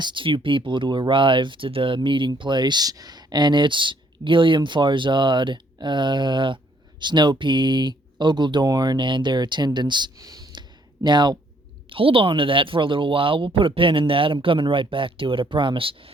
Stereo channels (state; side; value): normal; both; correlation 0.66